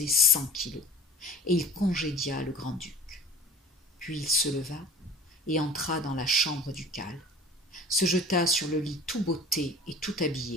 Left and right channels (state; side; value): normal; both; correlation 0.41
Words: 100 kilos, et il congédia le grand-duc. Puis il se leva et entra dans la chambre ducale, se jeta sur le lit tout botté et tout